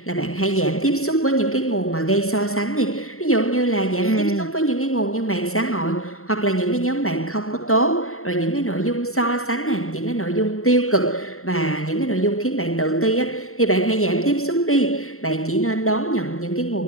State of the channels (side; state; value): right; late; 0.63 ms